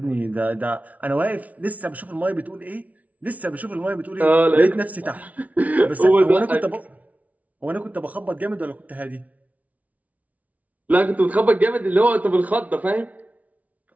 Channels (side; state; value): left; late; 0.070 ms